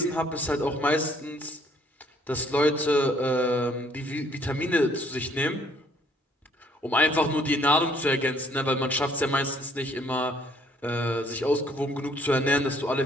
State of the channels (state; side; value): normal; both; correlation 0.63